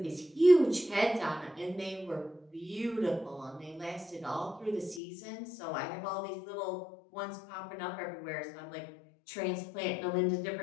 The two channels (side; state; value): right; drops out; at 5.0 s